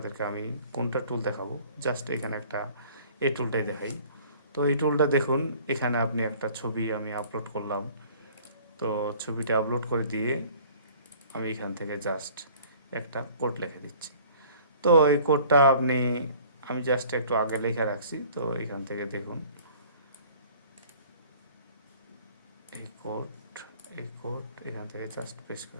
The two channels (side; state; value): both; inverted; correlation -0.51